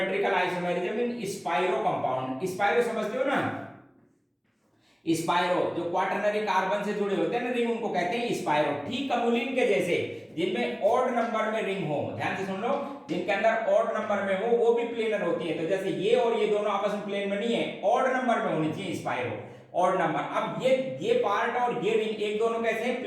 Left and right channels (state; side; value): identical; both; correlation 1.00